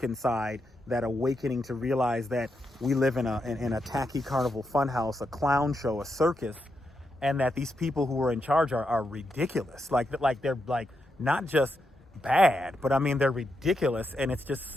inside, that awakening to realize that we live in a tacky carnival funhouse, a clown show, a circus, and that these people who are in charge are ridiculous. Like they're like not just bad, but I mean they're ridiculous, and it's just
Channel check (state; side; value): normal; both; correlation 0.84